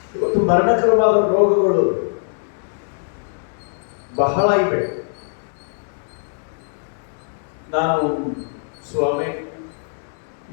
ಇವತ್ತು ಮರಣಕರವಾದ ರೋಗಗಳು ಬಹಳ ಇವೆ. ನಾನು ಸ್ವಾಮಿ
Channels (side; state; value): right; silent; digital silence